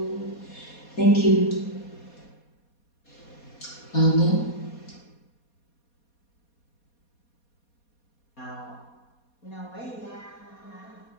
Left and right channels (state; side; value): late; right; 4.2 ms